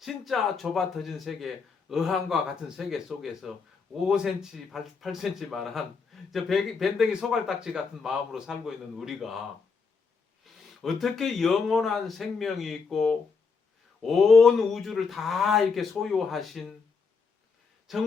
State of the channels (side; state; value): right; quieter; 5.0 dB